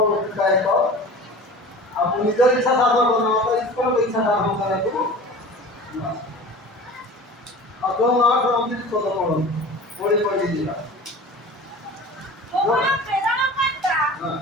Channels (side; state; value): both; normal; correlation 0.38